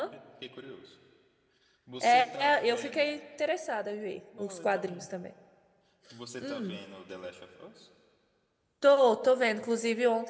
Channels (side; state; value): both; identical; correlation 1.00